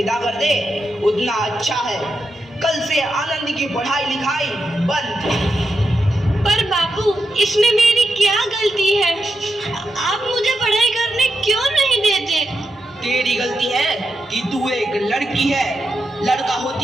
कर दे उतना अच्छा है। कल से आनंदी की पढ़ाई लिखाई बंद। पर बापू, इसमें मेरी क्या गलती है? आप मुझे पढ़ाई करने क्यों नहीं देते? तेरी गलती है कि तू एक लड़की है। लड़का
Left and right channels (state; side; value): normal; both; correlation 0.86